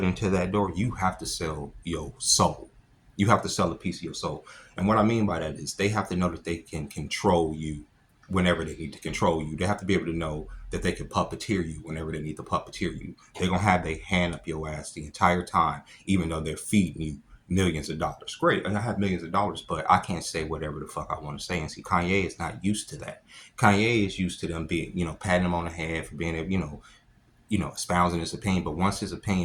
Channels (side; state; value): both; identical; correlation 1.00